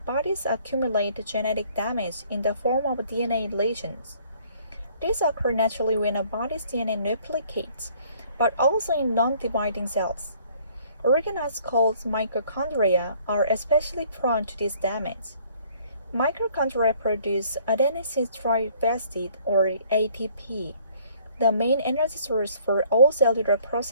accumulate genetic damage in the form of DNA lesions. This occurs naturally when a body's DNA replicates, but also in non-dividing cells. Organoids called mitochondria are especially prone to this damage. Mitochondria produce adenosine triphosphate or ATP, the main energy source for all cellular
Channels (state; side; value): inverted; both; correlation -0.59